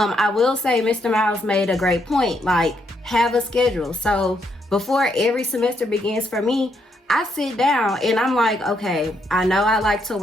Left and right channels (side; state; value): both; normal; correlation 0.76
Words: will say Mr. Miles made a great point. Like, have a schedule. So before every semester begins for me, I sit down and I'm like, okay, I know I like to